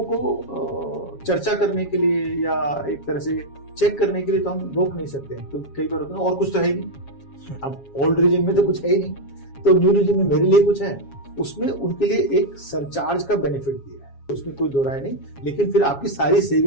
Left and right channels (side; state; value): right; late; 7.3 ms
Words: को चर्चा करने के लिए या एक तरह से चेक करने के लिए तो हम रोक नहीं सकते हैं, क्योंकि कई बार होता है और कुछ तो है ही नहीं। अब ओल्ड रिजिम में तो कुछ है ही नहीं, तो न्यू रिजिम में मेरे लिए कुछ है, उसमें उनके लिए एक सरचार्ज का बेनिफिट दिया है, उसमें कोई दो राय नहीं। लेकिन फिर आपकी सारी